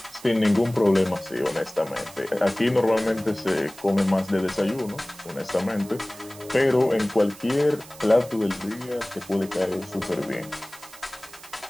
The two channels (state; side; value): noise; right; hiss, 19 dB below the sound